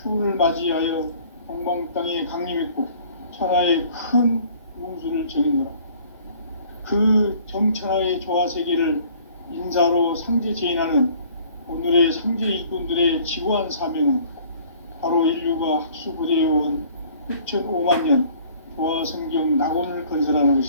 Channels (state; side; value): inverted; both; correlation -0.54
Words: 추운을 맞이하여 동방 땅에 강림했고 천하의 큰 운수를 정했노라. 그 정천하의 조화세계를 인사로 상제 제인하는 오늘의 상제 일꾼들의 지구한 사명은 바로 인류가 학수고대해온 흑천 5만 년 조화성경 낙원을 건설하는